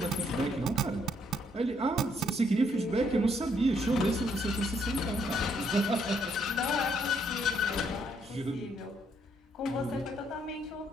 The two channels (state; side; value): normal; both; correlation 0.71